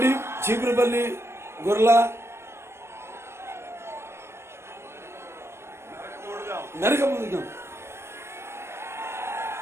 చీపురుపల్లి, గొర్ల, మెరకముందుగా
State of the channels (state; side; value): late; left; 0.12 ms